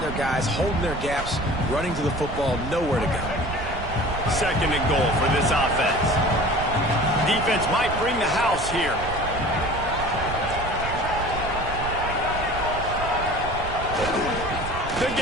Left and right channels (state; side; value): noise; right; rumble, 9 dB below the sound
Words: guys, holding their gaps, running to the football, nowhere to go. Second and goal for this offense. Defense might bring the house here. The